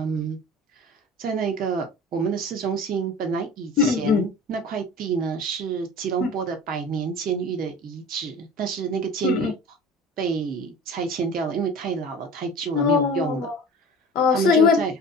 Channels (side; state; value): both; normal; correlation 0.38